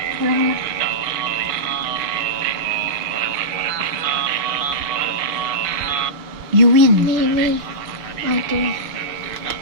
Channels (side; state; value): left; late; 6.5 ms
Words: Wala. You win. Me. My turn.